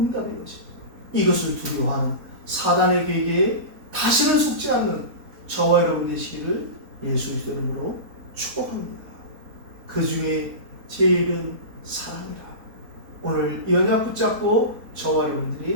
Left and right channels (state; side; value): late; left; 4.1 ms